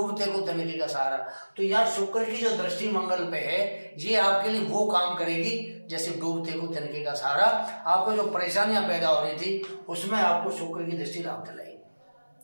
को तिनके का सहारा। तो यार शुक्र की जो दृष्टि मंगल पे है, ये आपके लिए वो काम करेगी जैसे डूबते को तिनके का सहारा। आपको जो परेशानियां पैदा हो रही थी उसमें आपको शुक्र की दृष्टि लाभ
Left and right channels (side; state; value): both; inverted; correlation -1.00